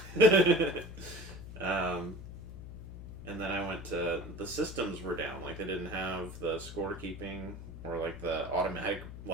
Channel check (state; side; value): noise; left; hum, 12 dB below the sound